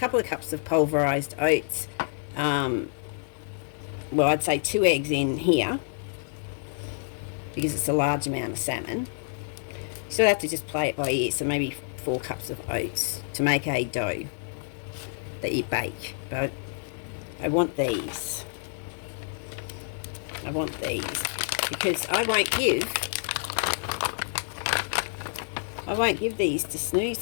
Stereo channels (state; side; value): silent; right; 59 dB below the other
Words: cups of pulverized oats. Well, I'd say 2 eggs in here, because it's a large amount of salmon. You still have to just play it by ear, so maybe 4 cups of oats to make a dough that you bake. But I want these. Because I won't give these to